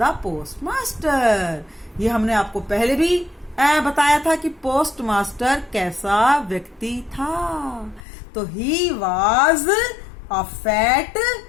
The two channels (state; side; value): drops out; right; at 8.0 s